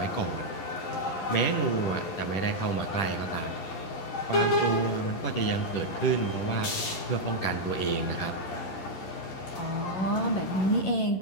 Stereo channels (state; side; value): late; right; 11 ms